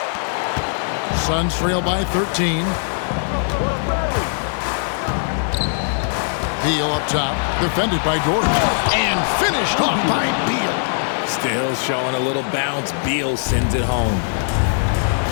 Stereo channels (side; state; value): right; silent; digital silence